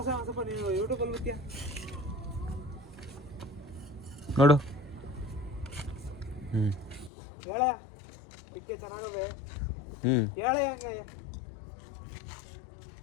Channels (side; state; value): right; drops out; at 7.1 s